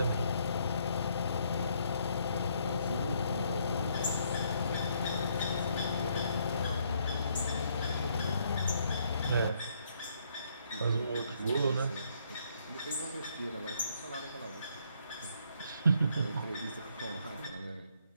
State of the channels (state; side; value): inverted; both; correlation -0.70